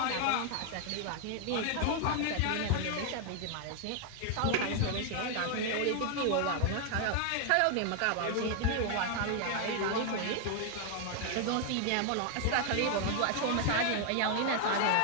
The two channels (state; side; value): different; both; correlation 0.00